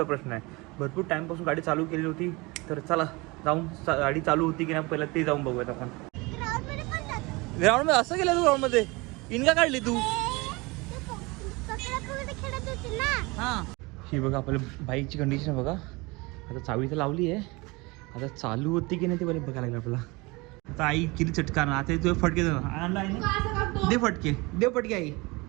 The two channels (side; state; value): left; quieter; 24.9 dB